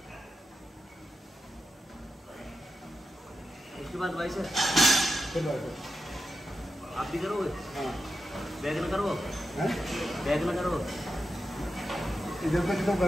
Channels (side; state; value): both; normal; correlation 0.89